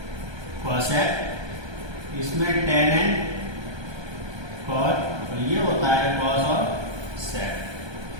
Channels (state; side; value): late; left; 1.3 ms